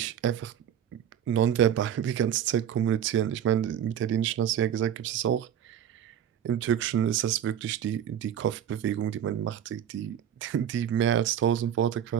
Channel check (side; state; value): left; quieter; 9.6 dB